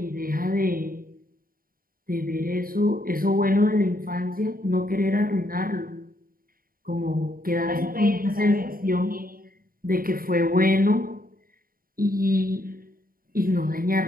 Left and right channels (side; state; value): left; late; 0.42 ms